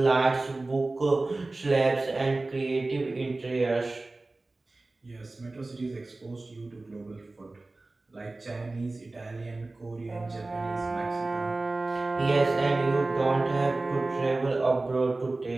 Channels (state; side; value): quieter; left; 3.1 dB